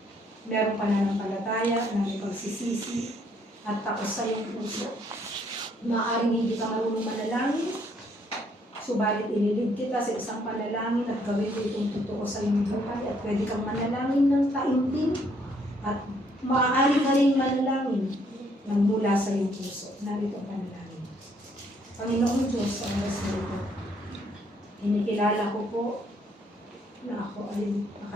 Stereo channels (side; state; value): both; normal; correlation 0.68